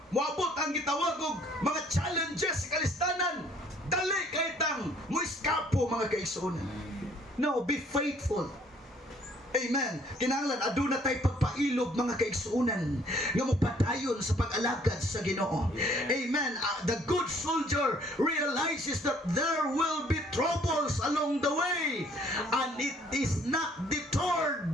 moabot ang gitawag og mga challenges sa kalistanan, dali kay tang muiskapo, mga kaigsunan. No, be faithful. Amen. Kinahanglan aduna tay pagpailog, mga kaigsuunan, nga mopadayon sa pag-alagad sa Ginoo. Amen. The good soldier realizes that there will be troubles along the way and it is not deterred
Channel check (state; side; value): normal; both; correlation 0.60